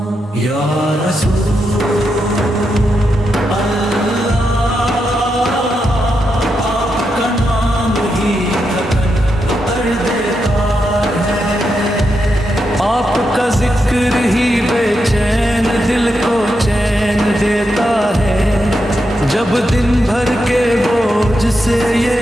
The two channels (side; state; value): both; normal; correlation 0.85